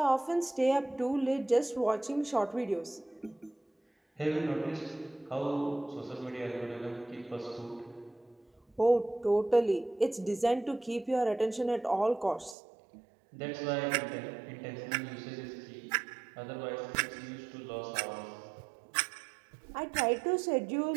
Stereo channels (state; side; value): drops out; left; at 12.6 s